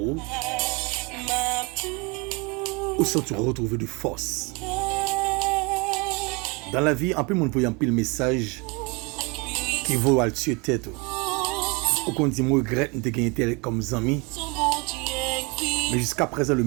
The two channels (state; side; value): quieter; left; 29.4 dB